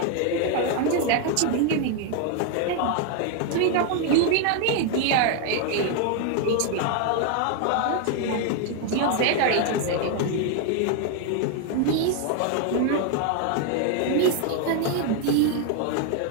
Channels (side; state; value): both; different; correlation 0.00